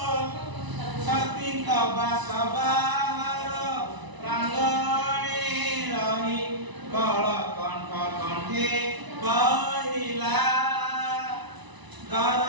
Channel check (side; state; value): left; late; 1.0 ms